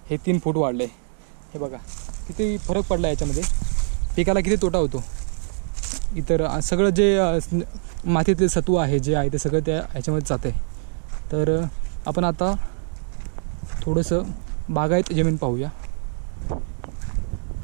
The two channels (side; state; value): left; silent; digital silence